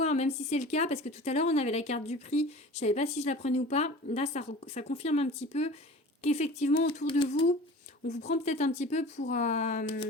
hein, même si c'est le cas, parce que tout à l'heure, on avait la carte du prix. Je savais pas si je la prenais ou pas. Là, ça confirme un petit peu qu'effectivement, autour de vous, on vous prend peut-être un petit peu pour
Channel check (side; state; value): both; normal; correlation 0.40